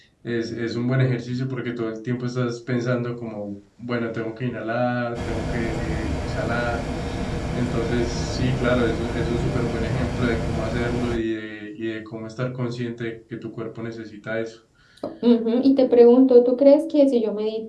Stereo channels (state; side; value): identical; both; correlation 1.00